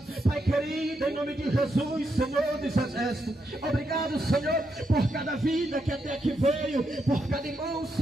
Pai querido, em nome de Jesus, Senhor dos exércitos. Obrigado, Senhor, por cada vida que até aqui veio, por cada irmão,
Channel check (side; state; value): both; normal; correlation 0.81